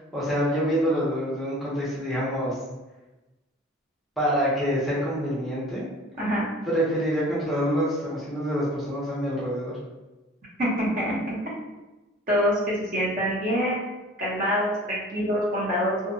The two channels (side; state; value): both; normal; correlation 0.45